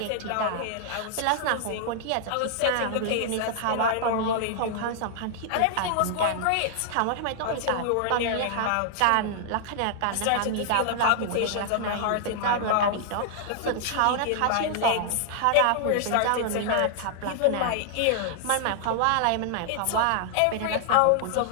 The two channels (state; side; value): different; both; correlation -0.01